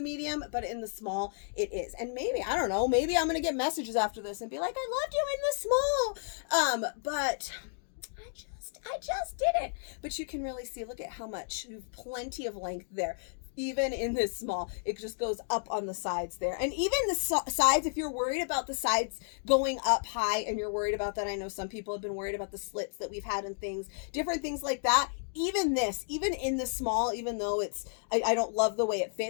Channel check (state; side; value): silent; right; digital silence